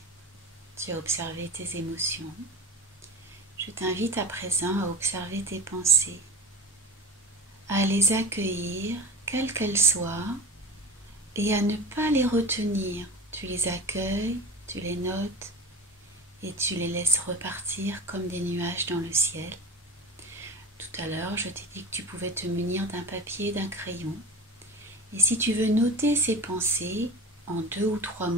tu as observé tes émotions. Je t'invite à présent à observer tes pensées, à les accueillir, quelles qu'elles soient, et à ne pas les retenir. Tu les accueilles, tu les notes et tu les laisses repartir comme des nuages dans le ciel. Tout à l'heure, je t'ai dit que tu pouvais te munir d'un papier et d'un crayon. Et si tu veux noter ces pensées en 2 ou 3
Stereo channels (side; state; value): both; normal; correlation 0.30